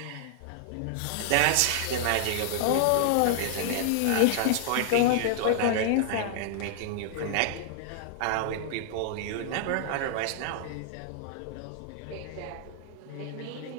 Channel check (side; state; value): both; different; correlation -0.01